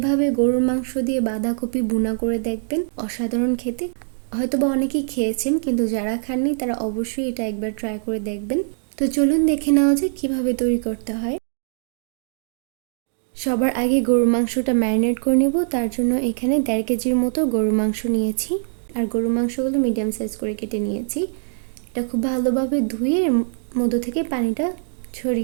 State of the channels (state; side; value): silent; left; digital silence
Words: গরুর মাংস দিয়ে বাঁধাকপি ভুনা করে দেখবেন, অসাধারণ খেতে। হয়তোবা অনেকেই খেয়েছেন, কিন্তু যারা খাননি তারা অবশ্যই এটা একবার ট্রাই করে দেখবেন। তো চলুন দেখে নেওয়া যায় কীভাবে তৈরি করতে হয়। সবার আগে গরুর মাংসটা ম্যারিনেট করে নেব। তার জন্য এখানে 1.5 কেজির মতো গরুর মাংস নিয়েছি, আর গরুর মাংসগুলো মিডিয়াম সাইজ করে কেটে নিয়েছি। এটা খুব ভালোভাবে ধুয়ে এর মধ্য থেকে পানিটা